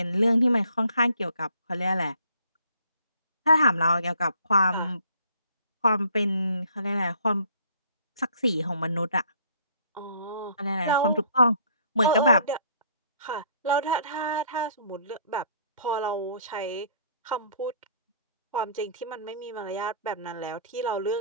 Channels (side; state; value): both; inverted; correlation -0.59